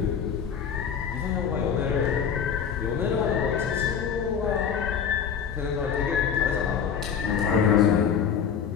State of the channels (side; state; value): right; quieter; 7.5 dB